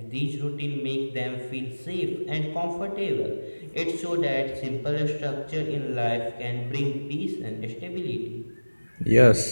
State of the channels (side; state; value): both; inverted; correlation -1.00